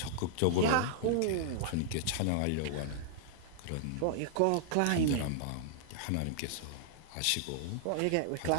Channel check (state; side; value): different; both; correlation -0.01